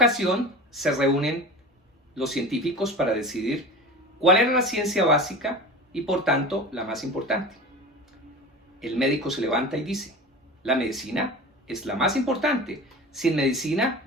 se reúnen los científicos para decidir cuál era la ciencia básica y por tanto la más importante. El médico se levanta y dice: la medicina es la más importante. Sin medicina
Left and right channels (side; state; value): both; normal; correlation 0.33